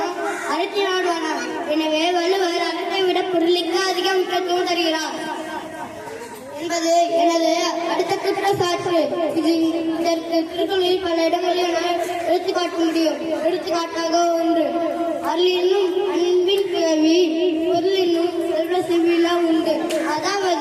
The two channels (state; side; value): identical; both; correlation 1.00